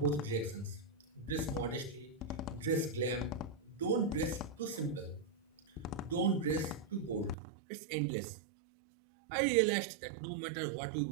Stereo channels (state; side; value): drops out; left; at 7.4 s